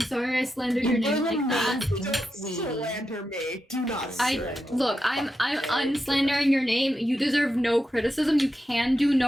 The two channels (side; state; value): both; normal; correlation 0.88